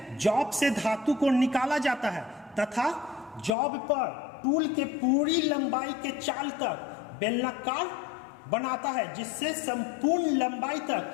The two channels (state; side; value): drops out; right; at 3.5 s